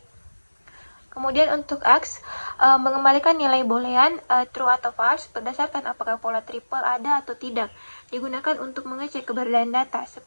Kemudian untuk X, mengembalikan nilai boolean true atau false berdasarkan apakah pola triple ada atau tidak. Digunakan untuk mengecek keberadaan data.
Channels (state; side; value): inverted; both; correlation -1.00